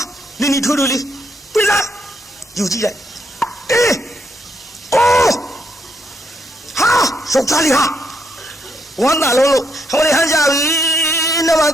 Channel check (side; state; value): both; normal; correlation 0.77